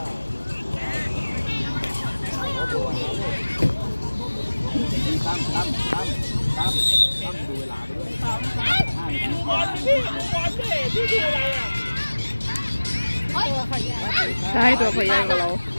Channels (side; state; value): both; inverted; correlation -1.00